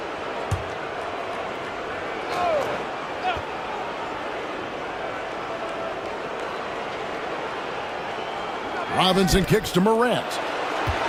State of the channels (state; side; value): identical; both; correlation 1.00